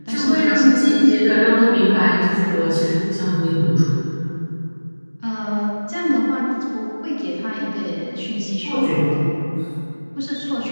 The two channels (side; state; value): both; inverted; correlation -1.00